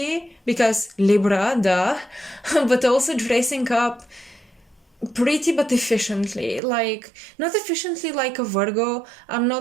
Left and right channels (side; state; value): left; drops out; at 6.6 s